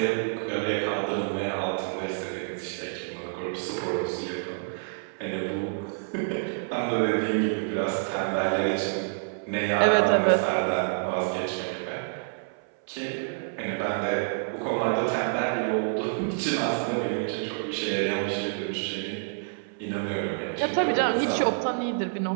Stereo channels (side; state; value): left; silent; 59 dB below the other